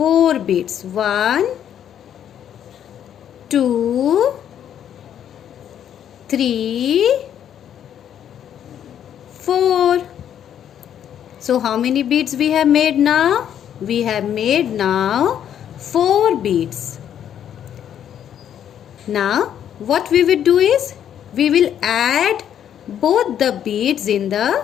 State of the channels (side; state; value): right; quieter; 9.7 dB